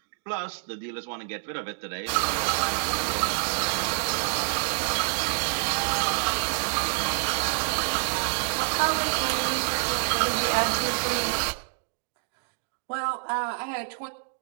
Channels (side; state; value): left; silent; digital silence